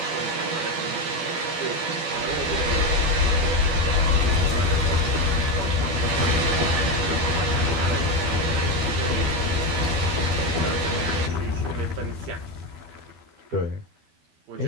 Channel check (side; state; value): left; late; 12 ms